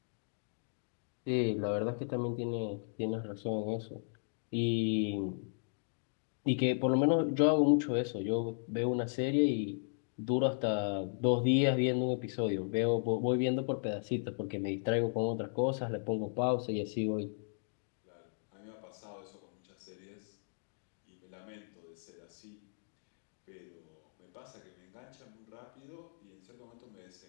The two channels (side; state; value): right; silent; digital silence